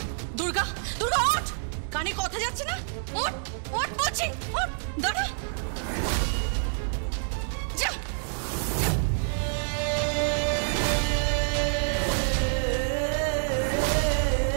দুর্গা, দুর্গা ওঠ, কানে কথা যাচ্ছে না? ওঠ, ওঠ বলছি, ওঠ, দাঁড়া, যা।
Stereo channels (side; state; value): left; silent; digital silence